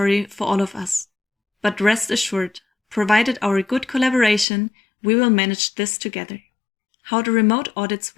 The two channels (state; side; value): drops out; right; at 4.5 s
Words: for all of us. But rest assured, provided our good collaboration, we will manage this together. How the remote audits